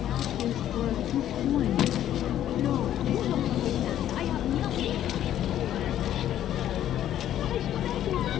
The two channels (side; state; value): right; quieter; 11.5 dB